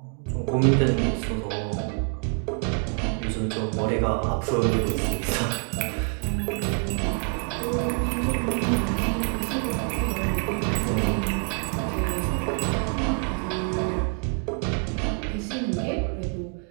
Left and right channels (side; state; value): left; quieter; 39.6 dB